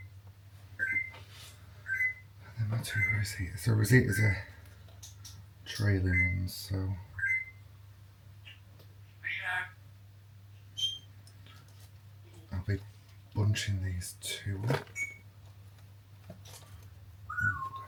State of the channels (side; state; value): both; identical; correlation 1.00